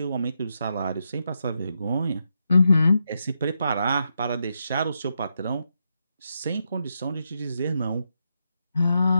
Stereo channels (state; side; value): inverted; both; correlation -0.83